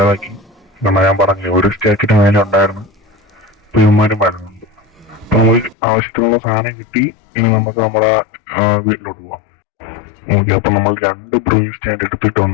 കാരണം ഞാൻ പറഞ്ഞു ഒരു സ്റ്റാക്കിന്റെ മേലെ ഉണ്ടായിരുന്നു. ഇപ്പൊ ഇവന്മാരും വരുന്നുണ്ട്. അപ്പൊ നമുക്ക് ആവശ്യത്തിനുള്ള സാധനം കിട്ടി. ഇനി നമുക്ക് നമ്മുടെ വീട്ടിലോട്ട് പോവാം. ഓക്കെ, അപ്പൊ നമ്മൾ 2 ബ്രൂയിങ് സ്റ്റാൻഡ്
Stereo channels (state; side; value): drops out; right; at 5.8 s